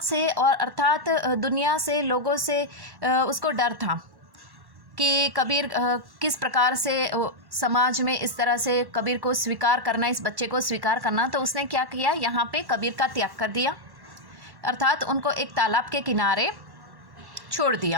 से और अर्थात दुनिया से, लोगों से उसको डर था कि कबीर किस प्रकार से समाज में इस तरह से कबीर को स्वीकार करना, इस बच्चे को स्वीकार करना। तो उसने क्या किया, यहाँ पे कबीर का त्याग कर दिया, अर्थात उनको एक तालाब के किनारे छोड़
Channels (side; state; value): left; late; 1.1 ms